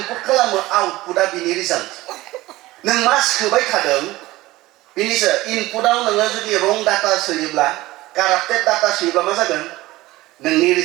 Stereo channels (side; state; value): left; quieter; 18.3 dB